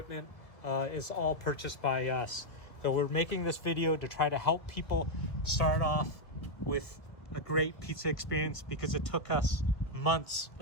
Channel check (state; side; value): late; right; 1.5 ms